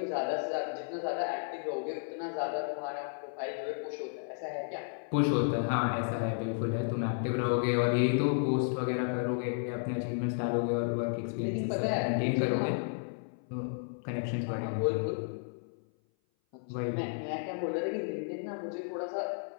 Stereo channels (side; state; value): right; silent; 56 dB below the other